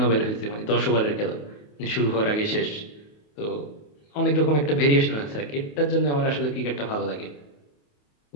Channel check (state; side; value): late; right; 28 ms